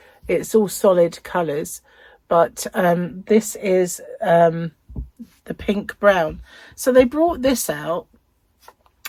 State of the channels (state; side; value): identical; both; correlation 1.00